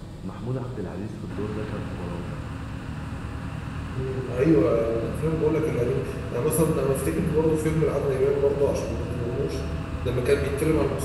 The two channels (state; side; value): identical; both; correlation 1.00